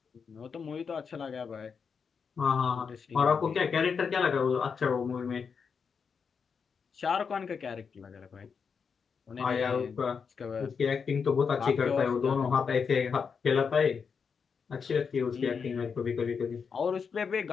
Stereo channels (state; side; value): quieter; right; 6.0 dB